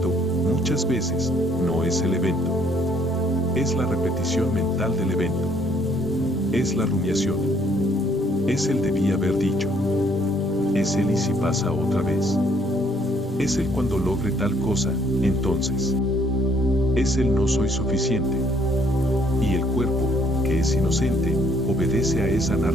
muchas veces, no es el evento. Es la repetición mental del evento. Es la rumiación. Es el debí haber dicho. Es el y si pasa otra vez. Es el cuando logre tal cosa, entonces. Es el no soy suficiente. Y el cuerpo, que es inocente, obedece a esa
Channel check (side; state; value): both; normal; correlation 0.65